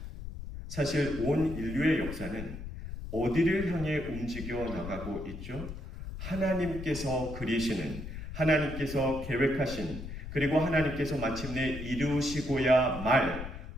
사실 온 인류의 역사는 어디를 향해 움직여 나가고 있죠? 하나님께서 그리시는, 하나님께서 계획하신, 그리고 하나님께서 마침내 이루시고야 말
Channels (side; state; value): left; noise; rumble, 9 dB below the sound